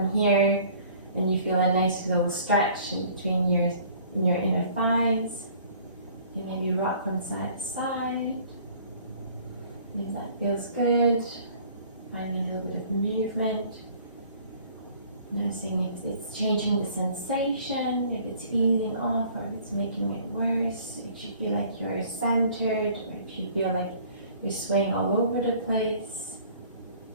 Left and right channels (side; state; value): both; inverted; correlation -0.53